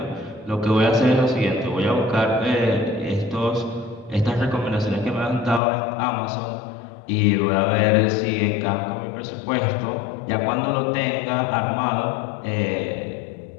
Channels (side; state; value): right; drops out; at 5.6 s